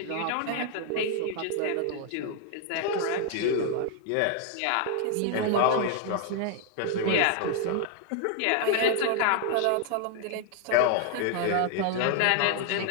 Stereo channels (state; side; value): different; both; correlation 0.00